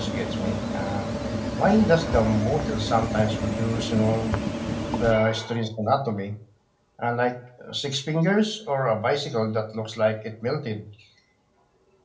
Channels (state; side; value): identical; both; correlation 1.00